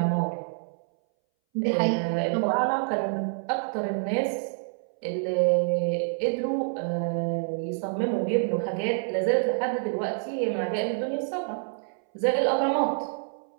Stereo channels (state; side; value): silent; left; 60 dB below the other